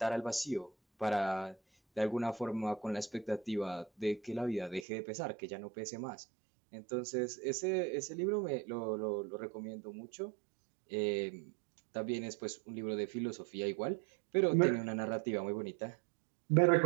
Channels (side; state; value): left; drops out; at 4.9 s